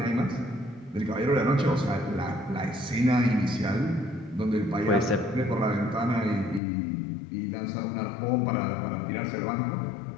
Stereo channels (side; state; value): right; drops out; at 6.6 s